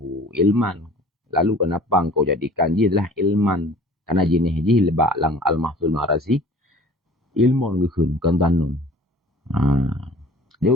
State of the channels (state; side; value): normal; both; correlation 0.47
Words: ilman. Lalu kenapa engkau jadikan dia adalah ilman? Karena jenis ji lebak lang Al-Mahsul Ma'razi. Ilmun gehun, kentanun. Dia